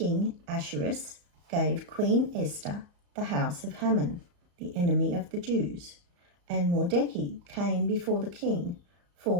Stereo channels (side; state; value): left; late; 34 ms